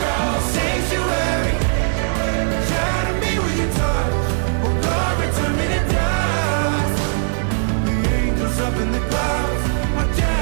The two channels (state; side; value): silent; left; digital silence